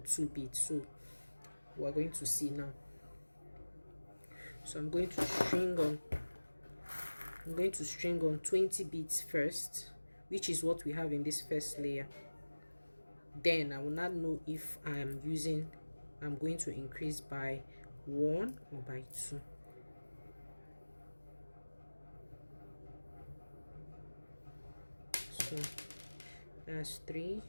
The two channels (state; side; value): inverted; both; correlation -1.00